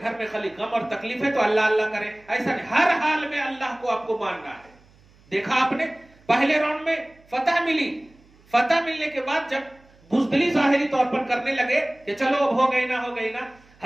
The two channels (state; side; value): noise; right; hum, 29 dB below the sound